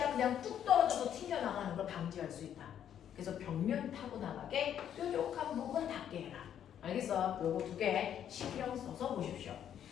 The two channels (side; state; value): right; quieter; 9.7 dB